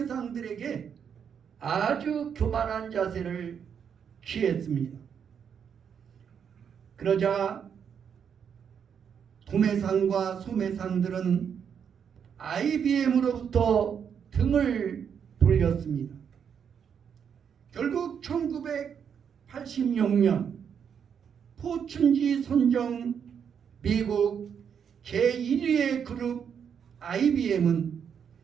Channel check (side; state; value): left; quieter; 7.5 dB